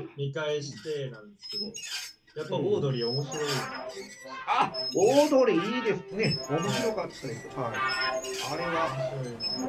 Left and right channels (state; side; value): identical; both; correlation 1.00